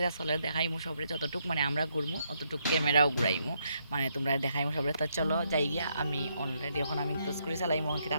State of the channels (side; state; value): both; inverted; correlation -0.76